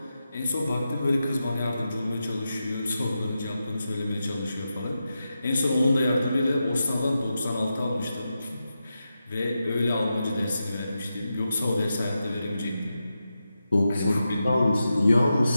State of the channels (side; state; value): both; inverted; correlation -0.89